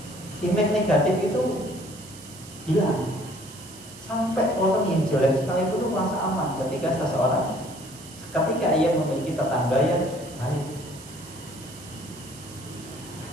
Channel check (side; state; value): right; noise; hiss, 17 dB below the sound